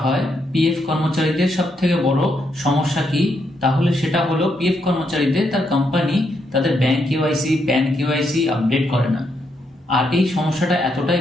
হয় পিএফ কর্মচারীদের সবথেকে বড় সমস্যা কি, তাহলে সেটা হলো পিএফ কর্মচারীদের তার কোম্পানি তাদের bank KYC, pan KYC update করে না। আর এই সমস্যাটা এতটাই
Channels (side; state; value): both; normal; correlation 0.78